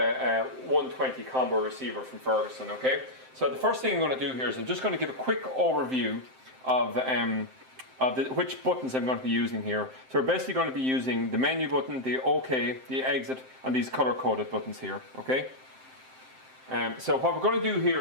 120 combo receiver from Ferguson, okay? So the first thing I'm going to do here is I'm just going to give a quick overview of which buttons I'm going to be using here. So we're basically going to be using the menu button, the OK, the exit and these color-coded buttons here, okay? So what we're going to do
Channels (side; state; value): left; late; 7.7 ms